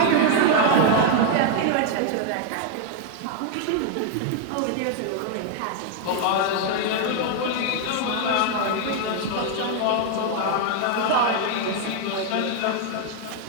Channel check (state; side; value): different; both; correlation 0.00